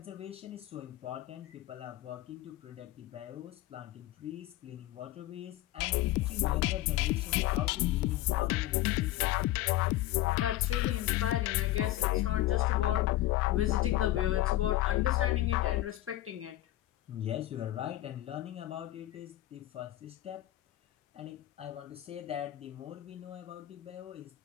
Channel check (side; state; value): right; quieter; 15.4 dB